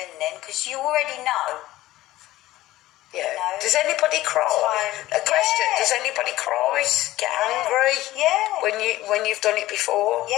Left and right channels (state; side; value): quieter; right; 16.2 dB